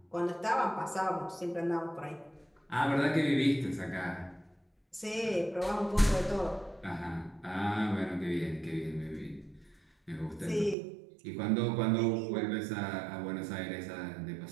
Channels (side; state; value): left; drops out; at 10.8 s